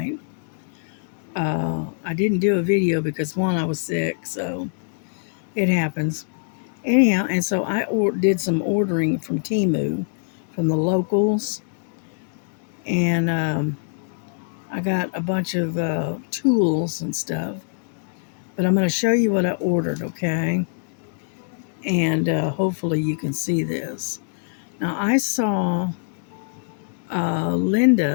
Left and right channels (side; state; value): right; silent; digital silence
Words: I didn't do a video because one, I was sick, so it happens. Anyhow, and so I did some ordering from Temu, from the locals, and I got a bunch of tools and stuff. But I'm going to show you what I ordered, okay? And hopefully you can see this. Now I saw